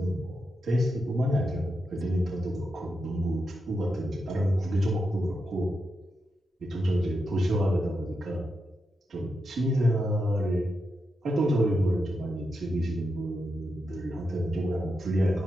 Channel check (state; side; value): normal; both; correlation 0.86